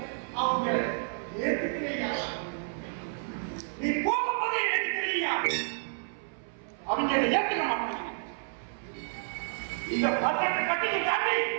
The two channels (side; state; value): left; silent; 58 dB below the other